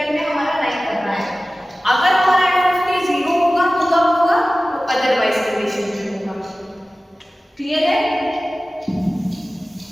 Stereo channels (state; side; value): normal; both; correlation 0.97